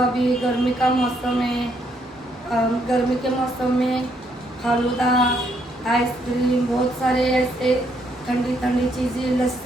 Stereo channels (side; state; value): both; normal; correlation 0.72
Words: गर्मी का मौसम है। गर्मी के मौसम में फालूदा, आइसक्रीम, बहुत सारे ऐसे ठंडी ठंडी चीज़ें,